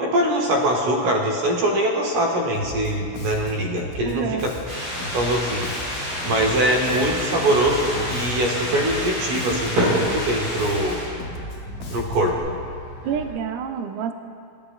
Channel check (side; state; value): left; late; 17 ms